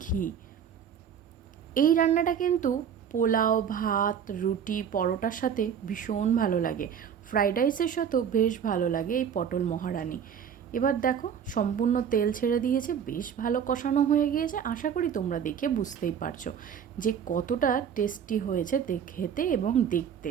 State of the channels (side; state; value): left; quieter; 8.0 dB